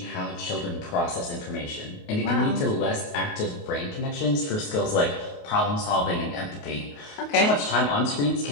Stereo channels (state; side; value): late; right; 28 ms